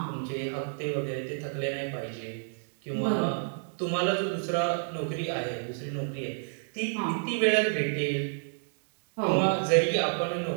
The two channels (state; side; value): silent; left; digital silence